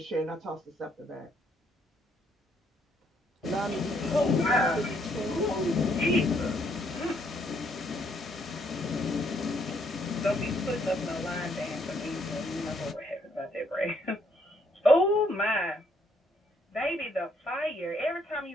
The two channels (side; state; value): both; normal; correlation 0.70